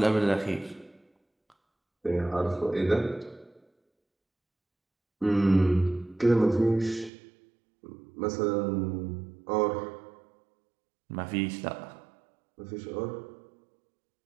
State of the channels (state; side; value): drops out; left; at 7.1 s